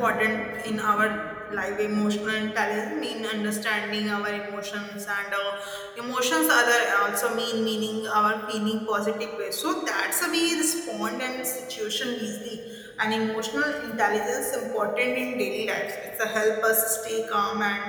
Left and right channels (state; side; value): identical; both; correlation 1.00